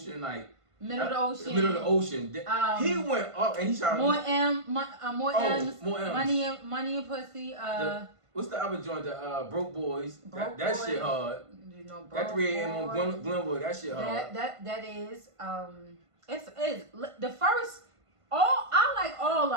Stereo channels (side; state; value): left; late; 1.5 ms